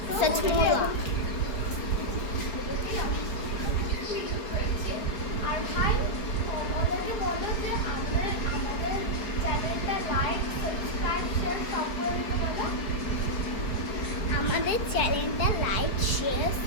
আর ভাই ওদেরকে বললো যে আমাদের চ্যানেলটা লাইক, সাবস্ক্রাইব, শেয়ার সব করে দিতে বলো। আমাদের চ্যানেলটা লাইক, শেয়ার,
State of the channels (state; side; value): late; right; 4.8 ms